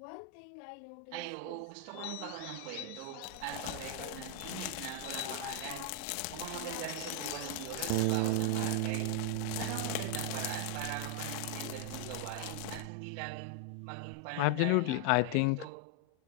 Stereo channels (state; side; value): different; both; correlation 0.00